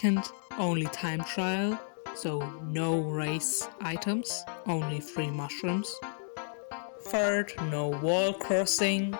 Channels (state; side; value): silent; right; digital silence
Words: only time trial. So no race items, only free mushrooms. Third, no wall crossing.